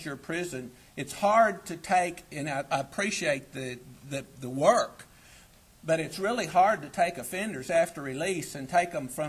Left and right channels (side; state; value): both; identical; correlation 1.00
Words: prison. It's hard to take, and I appreciate the work, but it's really hard to take offenders after release and take them